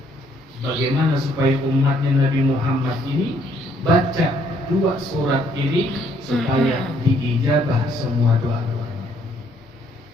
bagaimana supaya umatnya Nabi Muhammad ini baca 2 surat ini supaya diijabah semua doa-doanya.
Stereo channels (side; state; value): both; normal; correlation 0.67